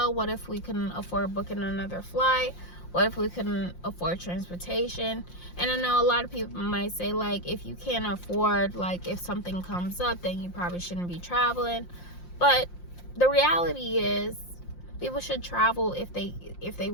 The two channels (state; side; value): late; right; 5.7 ms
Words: What if we couldn't afford booking another flight? What if we couldn't afford transportation? And I know a lot of people might say, like, if you can't afford, like, if something comes up, then you probably shouldn't be traveling. But the reality is, people should travel if they